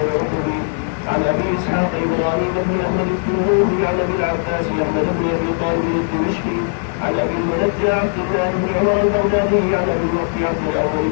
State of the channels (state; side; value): silent; right; 67 dB below the other